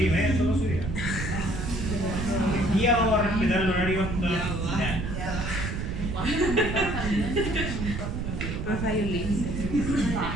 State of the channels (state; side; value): noise; right; rumble, 4 dB below the sound